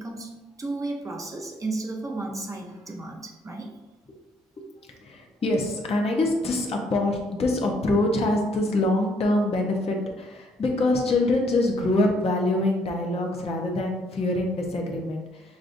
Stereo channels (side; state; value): both; normal; correlation 0.68